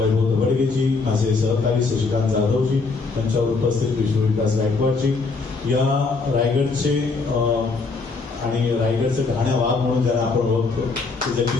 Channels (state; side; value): quieter; right; 4.1 dB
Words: दबडगेजी, माझे सहकारी शशिकांत जाधवजी, त्यांच्यावर उपस्थित विष्णुविकास गायकवाडजी, या रायगडचे आणि रायगडचे घाण्या वाघ म्हणून ज्यांना आपण ओळखतो ते